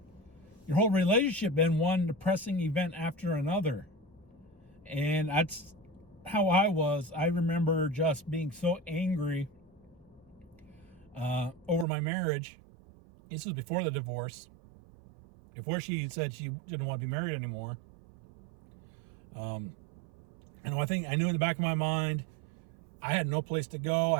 your whole relationship been one depressing event after another? And that's how I was. I remember just being so angry over my marriage. This was before the divorce. Before she said she didn't want to be married anymore. And I think I knew in the back of my mind, I had no place to go. I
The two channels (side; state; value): left; drops out; at 11.9 s